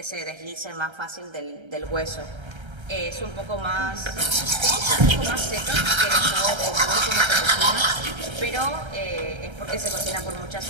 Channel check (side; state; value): left; late; 1.3 ms